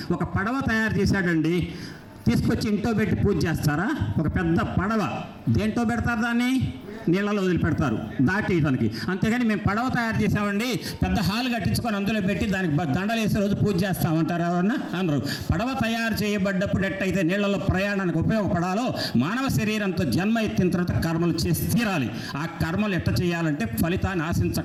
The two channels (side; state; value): both; identical; correlation 1.00